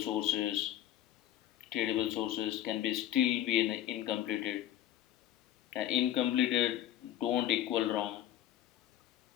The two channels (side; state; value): right; quieter; 12.2 dB